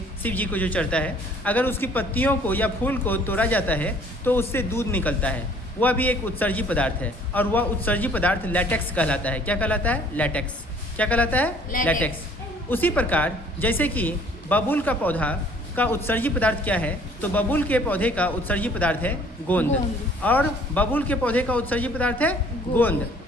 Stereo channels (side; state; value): both; normal; correlation 0.56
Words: शिव जी को जो चढ़ता है, अगर उसकी पत्तियों को या फूल को तोड़ा जाता है तो उससे दूध निकलता है। वह भी एक उत्सर्जी पदार्थ है और वह उत्सर्जी पदार्थ लैटेक्स कहलाता है। क्या कहलाता है? लैटेक्स। क्या कहलाता है? लैटेक्स। उसी प्रकार जैसे कि बबूल का पौधा का उत्सर्जी पदार्थ क्या है, तो बबूल के पौधे का उत्सर्जी पदार्थ है गोंद और बबूल के पौधे का उत्सर्जी पदार्थ है गोंद।